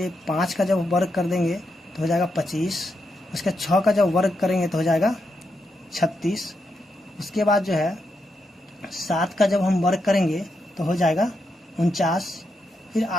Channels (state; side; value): normal; both; correlation 0.83